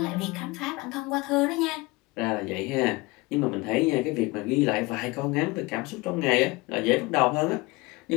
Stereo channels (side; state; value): right; quieter; 23.1 dB